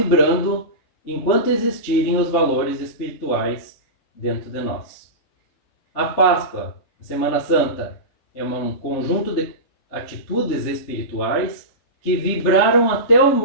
enquanto existirem os valores espirituais dentro de nós. A Páscoa, a Semana Santa, é um conjunto de atitudes espirituais que vibraram até o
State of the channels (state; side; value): late; right; 3.4 ms